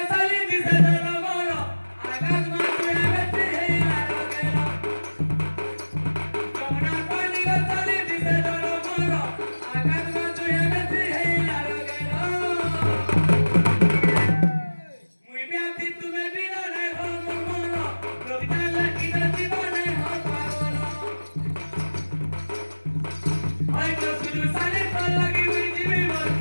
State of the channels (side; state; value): both; inverted; correlation -1.00